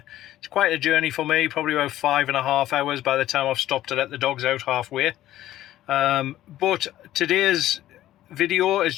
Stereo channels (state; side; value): quieter; right; 13.8 dB